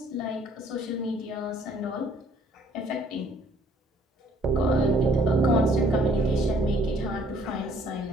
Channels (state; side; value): normal; both; correlation 0.61